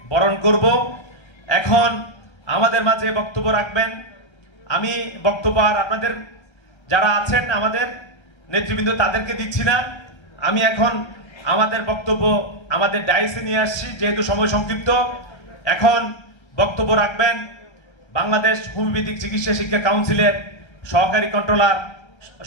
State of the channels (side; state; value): right; late; 1.3 ms